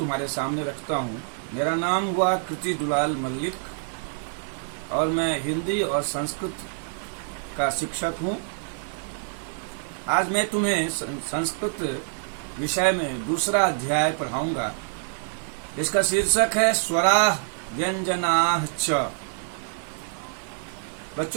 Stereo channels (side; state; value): left; silent; digital silence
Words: सामने रखता हूं। मेरा नाम हुआ कृति दुलाल मल्लिक और मैं हिंदी और संस्कृत का शिक्षक हूं। आज मैं तुम्हें संस्कृत विषय में दूसरा अध्याय पढ़ाऊंगा। इसका शीर्षक है स्वराः व्यंजनाः च।